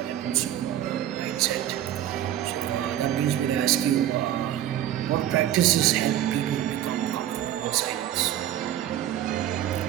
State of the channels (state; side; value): quieter; left; 11.8 dB